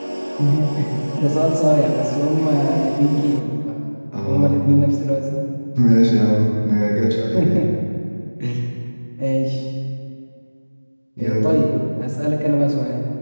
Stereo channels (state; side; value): inverted; both; correlation -1.00